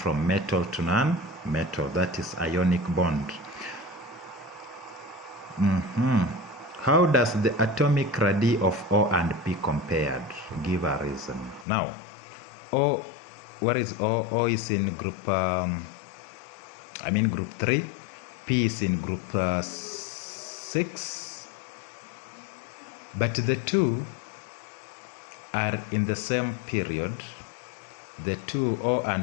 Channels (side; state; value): right; drops out; at 11.7 s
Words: metal to non-metal. That is ionic bond. How does the atomic radii of O and P compared? Give a reason. Now, O, where is O? O is in group, group 3. P is in group 6. But the two are in the same period. The two, O